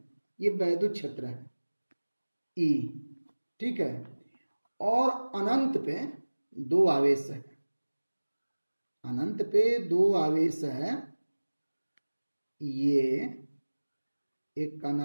ये वैद्युत क्षेत्र है ई, ठीक है, और अनंत पे दो आवेश है, अनंत पे दो आवेश है, ये एक का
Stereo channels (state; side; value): inverted; both; correlation -1.00